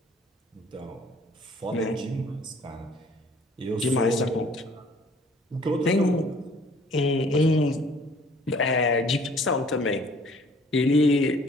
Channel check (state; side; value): normal; both; correlation 0.56